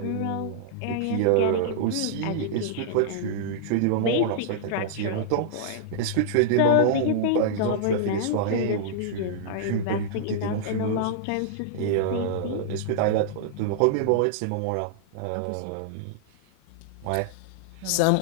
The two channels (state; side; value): different; both; correlation -0.02